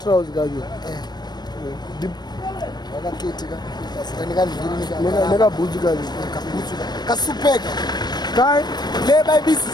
kaje neka boots kaje ka supeka kai le bayibisi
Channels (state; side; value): late; right; 0.20 ms